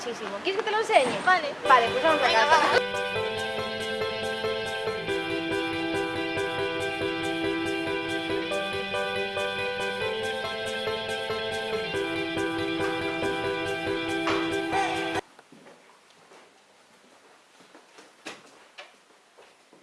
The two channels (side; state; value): both; identical; correlation 1.00